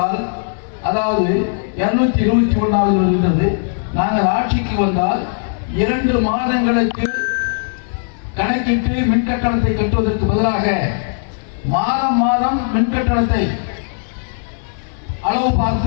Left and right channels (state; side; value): silent; right; digital silence